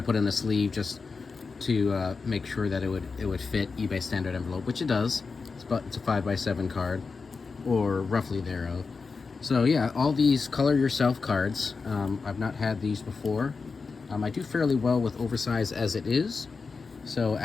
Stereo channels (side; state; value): right; quieter; 4.7 dB